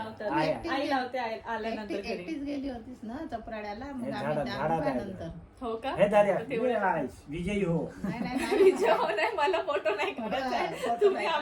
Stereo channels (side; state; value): both; identical; correlation 1.00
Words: आहे. आई लावते आल्यानंतर एकटी- घरी. एकटीच गेली होतीस ना चपराड्याला मग हे आम्ही झाडात आहे. नंतर हो का हे दाद्या, तर तेवढं- आहे. विजयी हो. नाही नाही नाही विजय हो नाही मला फोटो नाही करायचा आहे. फोटो तुम्ही नाही